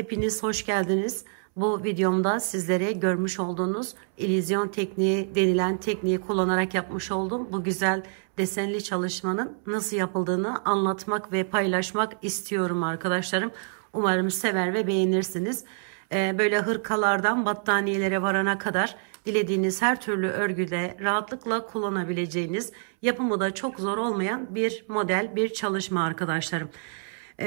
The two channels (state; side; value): silent; left; 60 dB below the other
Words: hoş geldiniz. Bu videomda sizlere görmüş olduğunuz illüzyon tekniği denilen tekniği kullanarak yapmış olduğum bu güzel desenli çalışmanın nasıl yapıldığını anlatmak ve paylaşmak istiyorum arkadaşlarım. Umarım sever ve beğenirsiniz. Böyle hırkalardan battaniyelere varana kadar dilediğiniz her türlü örgüde rahatlıkla kullanabileceğiniz, yapımı da çok zor olmayan bir model, bir çalışma arkadaşlarım.